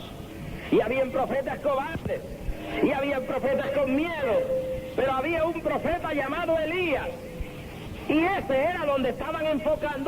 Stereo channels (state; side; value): identical; both; correlation 1.00